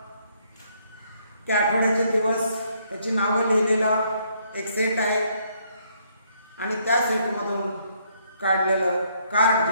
की आठवड्याचे दिवस त्याची नावं लिहिलेलं एक सेट आहे आणि त्या सेटमधून काढलेलं कार्ड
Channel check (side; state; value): both; inverted; correlation -0.70